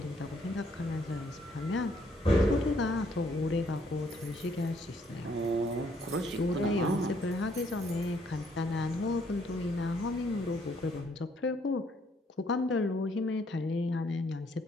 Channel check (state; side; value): normal; both; correlation 0.68